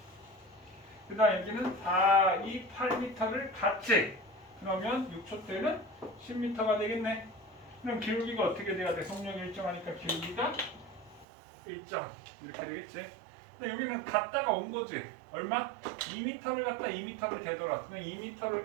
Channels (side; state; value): left; drops out; at 11.2 s